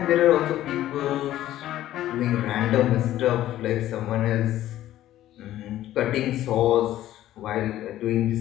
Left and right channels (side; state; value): right; quieter; 13.5 dB